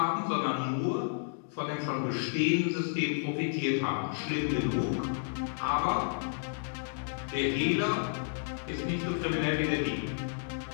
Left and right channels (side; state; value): right; silent; digital silence